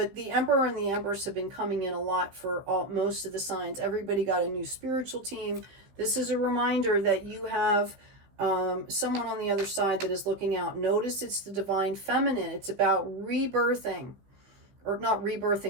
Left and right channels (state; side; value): late; left; 15 ms